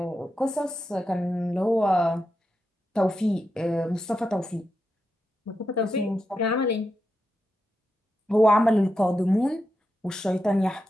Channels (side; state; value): both; normal; correlation 0.87